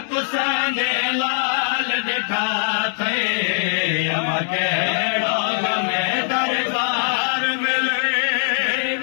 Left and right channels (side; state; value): right; silent; digital silence